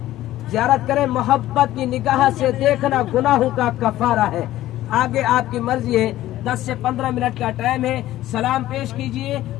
زیارت کریں. محبت کی نگاہ سے دیکھنا گناہوں کا کفارہ ہے. آگے آپ کی مرضی ہے, 10 سے 15 منٹ کا ٹائم ہے. سلام پیش کیجئے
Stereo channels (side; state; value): right; quieter; 14.6 dB